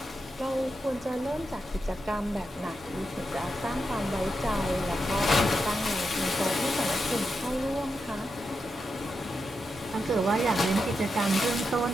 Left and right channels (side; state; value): both; normal; correlation 0.86